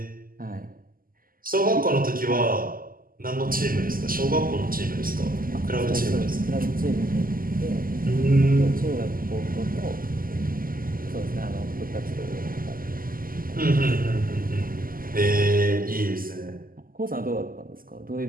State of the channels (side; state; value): left; late; 0.42 ms